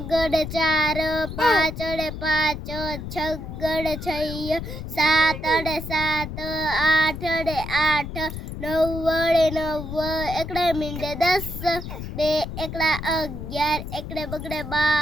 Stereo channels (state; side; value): noise; left; rumble, 8 dB below the sound